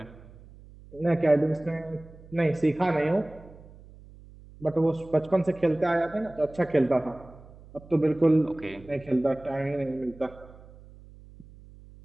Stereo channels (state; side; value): noise; right; hum, 21 dB below the sound